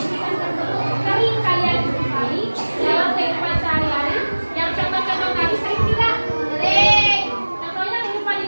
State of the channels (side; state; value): both; inverted; correlation -1.00